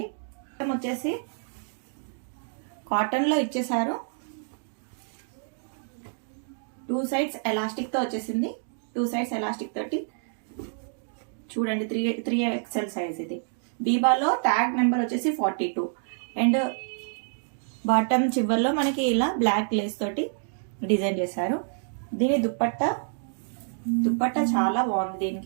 వచ్చేసి కాటన్ లో ఇచ్చేసారు, 2 sides ఎలాస్టిక్ తో వచ్చేసింది. 2 sides ఎలాస్టిక్ తోటి చూడండి 3XL సైజ్. ఇది బీబాలో ట్యాగ్ నెంబర్ వచ్చేసి 42 అండ్ బాటమ్ చివర్లో మనకి ఇలా బ్లాక్ లేస్ తోటి డిజైన్ చేశారు. దీని దుప్పట్టా చాలా బాగుంది.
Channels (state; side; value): silent; left; digital silence